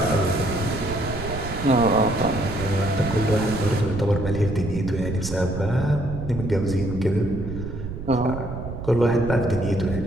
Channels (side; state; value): right; noise; rumble, 8 dB below the sound